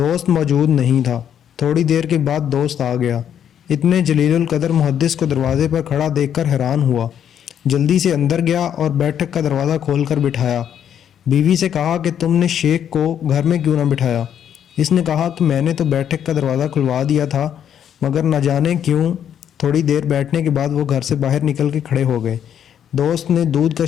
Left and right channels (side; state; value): right; quieter; 9.3 dB